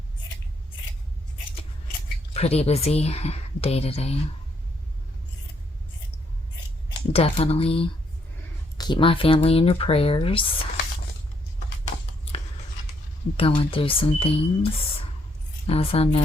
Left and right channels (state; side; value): normal; both; correlation 0.73